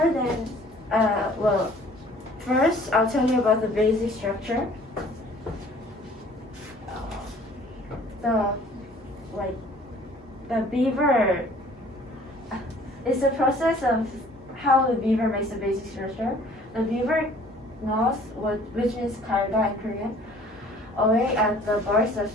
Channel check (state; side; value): normal; both; correlation 0.53